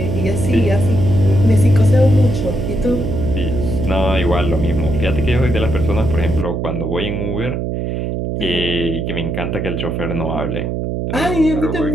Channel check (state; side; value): noise; right; hum, 2 dB below the sound